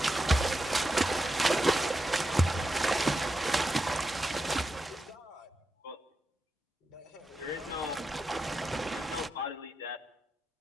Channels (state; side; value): normal; both; correlation 0.88